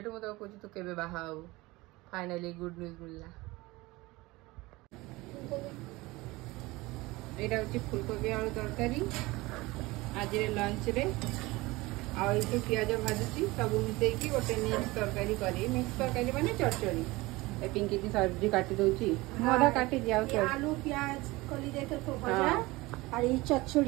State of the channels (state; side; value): quieter; left; 21.3 dB